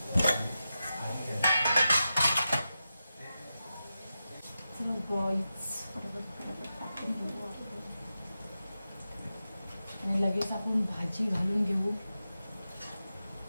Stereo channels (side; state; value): both; inverted; correlation -0.91